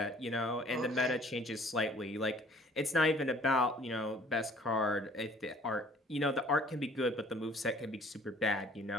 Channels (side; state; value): both; normal; correlation 0.54